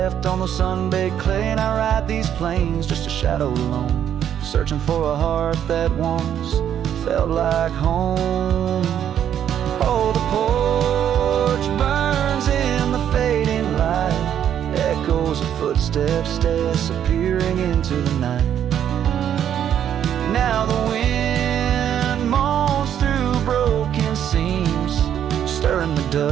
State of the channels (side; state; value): left; quieter; 9.7 dB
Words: on the sun-baked clay, and I ride these plains just a shadow alone, searching for a heart that once felt like home. Oh, the porch burns in the fading light, echoes of footsteps disappearing into the night. Now the wind moans through broken seams, stirring the